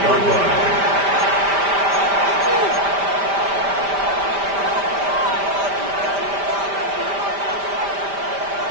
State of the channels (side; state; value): left; late; 5.1 ms